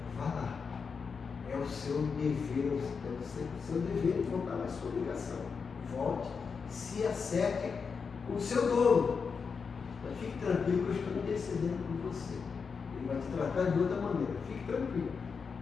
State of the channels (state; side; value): quieter; right; 5.6 dB